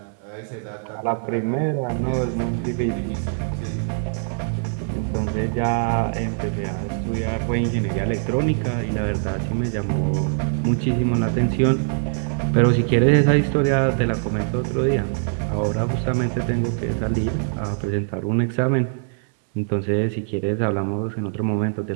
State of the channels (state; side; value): silent; left; digital silence